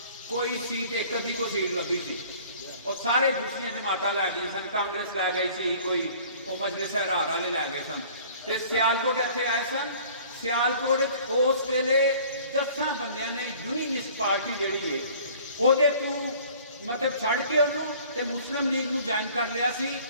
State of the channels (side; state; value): both; inverted; correlation -0.51